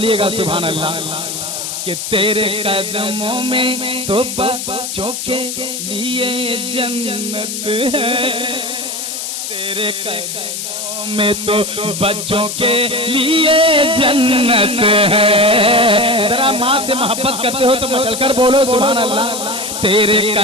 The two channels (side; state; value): left; noise; hiss, 5 dB below the sound